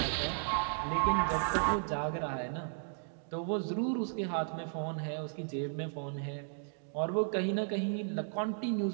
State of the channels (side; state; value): left; silent; digital silence